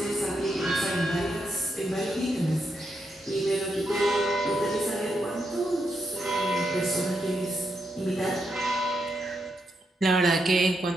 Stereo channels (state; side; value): normal; both; correlation 0.82